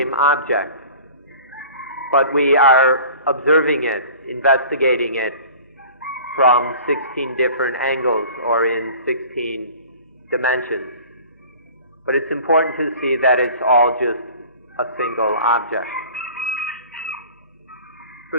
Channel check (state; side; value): inverted; both; correlation -0.44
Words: object. But we are observing it, investigating it from 16 different angles or in 16 dimensions. But it's important to see that it's all just a single object. For